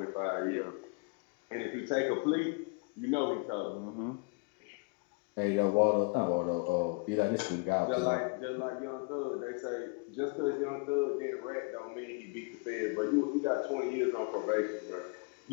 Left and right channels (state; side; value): quieter; right; 32.6 dB